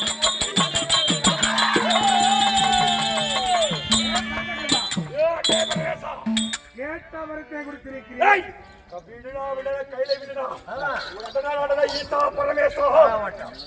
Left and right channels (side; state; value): both; identical; correlation 1.00